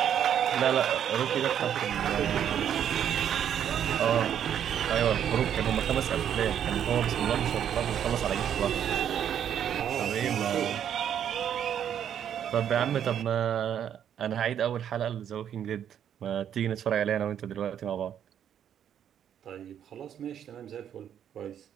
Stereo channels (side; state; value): left; quieter; 9.4 dB